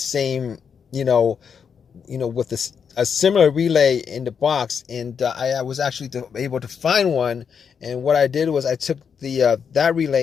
with a similar relay in the box, and I was actually able to find one. And what I did was I took that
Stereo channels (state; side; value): quieter; right; 6.8 dB